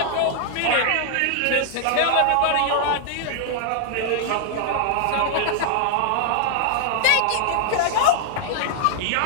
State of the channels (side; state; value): both; different; correlation 0.00